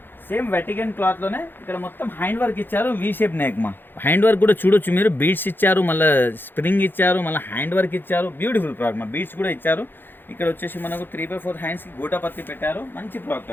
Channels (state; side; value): late; right; 0.098 ms